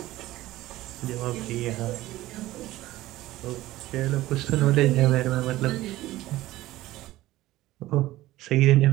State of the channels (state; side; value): quieter; left; 16.5 dB